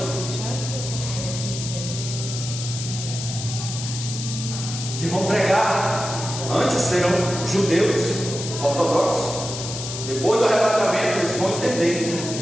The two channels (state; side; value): noise; left; hiss, 7 dB below the sound